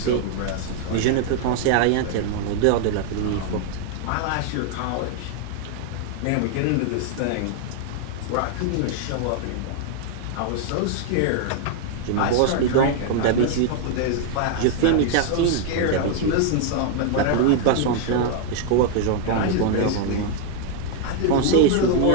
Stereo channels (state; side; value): different; both; correlation 0.00